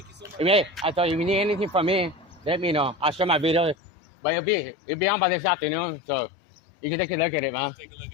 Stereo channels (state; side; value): drops out; right; at 3.8 s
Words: you so much. Hey, I thought if you need anything from me, let me know. I'll share my video. But it'll be on by this afternoon, so you can take a look at it, man. Take a look